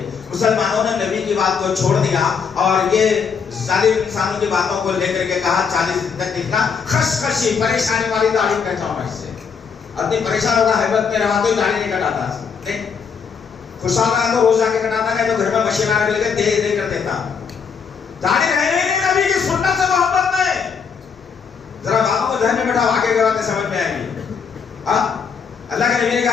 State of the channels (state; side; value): quieter; right; 6.2 dB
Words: مسلمانوں نے نبی کی بات کو چھوڑ دیا اور یہ ظالم انسانوں کی باتوں کو لے کر کے کہا 40 دن تک دکھنا، خشخشی پریشانی والی داڑھی کہتا ہوں میں اس سے۔ اتنی پریشان ہوگا حیبت میں رہا تو داڑھی نہیں کٹاتا، نہیں خوشحال رہا تو روز جا کے کٹاتا، نہیں تو گھر میں مشین آنے لگے دے دے کر دیتا۔ داڑھی رہے نہیں نبی کی سنت سے محبت میں۔ ذرا باتوں کو ذہن میں بیٹھا، آگے کے باتیں سمجھ میں آئیں گی۔ اللہ کے نبی نے